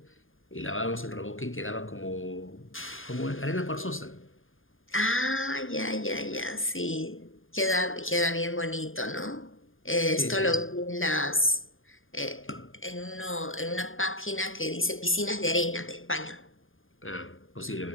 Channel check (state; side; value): late; right; 0.59 ms